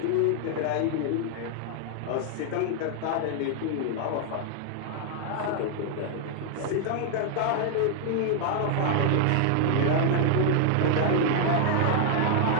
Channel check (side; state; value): both; different; correlation 0.00